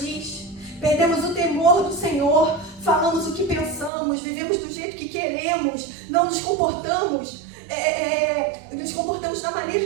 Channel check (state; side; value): drops out; left; at 3.9 s